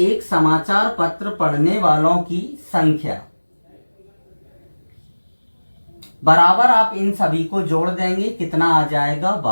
समाचार पत्र पढ़ने वालों की संख्या बराबर, आप इन सभी को जोड़ देंगे, कितना आ जाएगा,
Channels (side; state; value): both; inverted; correlation -1.00